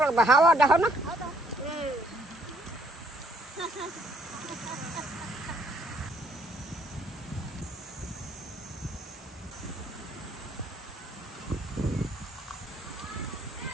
লাগবে হাওয়া দেখো না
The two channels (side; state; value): both; normal; correlation 0.66